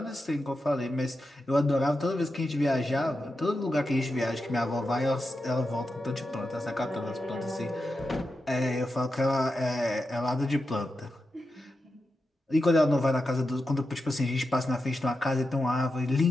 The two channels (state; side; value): normal; both; correlation 0.89